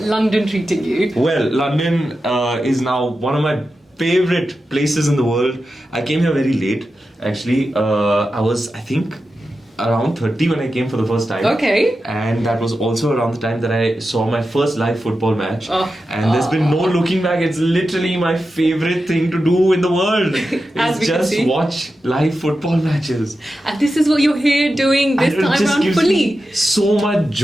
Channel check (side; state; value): both; normal; correlation 0.91